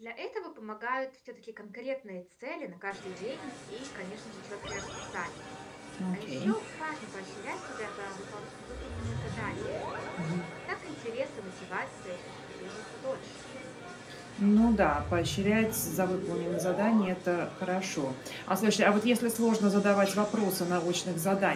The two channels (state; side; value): identical; both; correlation 1.00